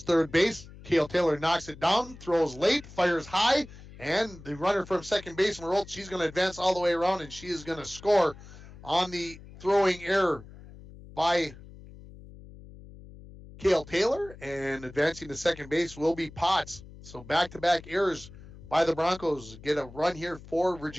third base. Kale Taylor knocks it down, throws late, fires high, and the runner from second base, Marolt, she's going to advance all the way around, and she is going to score on the throwing error by Kale Taylor, and advancing to second base will be Potts. So back-to-back errors by the Broncos get a run here for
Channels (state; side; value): noise; left; hum, 18 dB below the sound